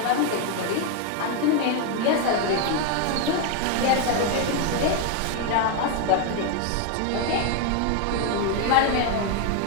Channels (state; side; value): different; both; correlation 0.01